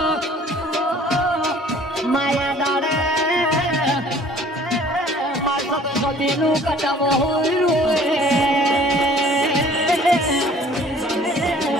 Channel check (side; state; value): both; normal; correlation 0.53